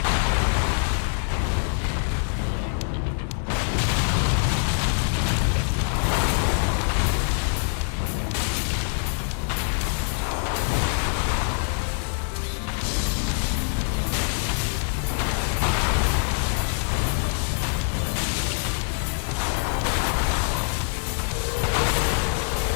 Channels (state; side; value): silent; right; 57 dB below the other